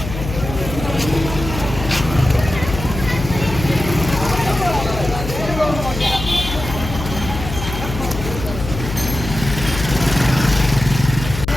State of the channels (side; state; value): left; noise; hum, 7 dB below the sound